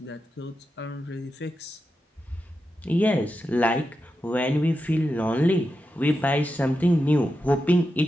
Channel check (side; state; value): both; normal; correlation 0.89